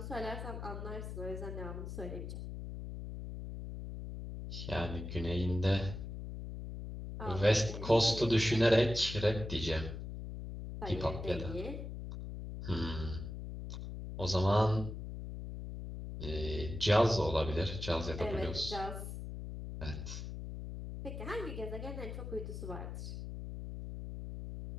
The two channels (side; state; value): left; noise; hum, 7 dB below the sound